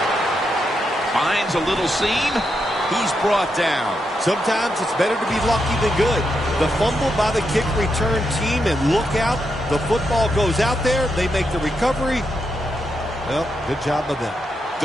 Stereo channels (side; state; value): both; normal; correlation 0.83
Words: Finds a little seam. He's brought down. Sometimes it's better to be lucky than good. The fumble by the kick return team, and look out. The football goes out there. They make the recovery. Well, good job of them. The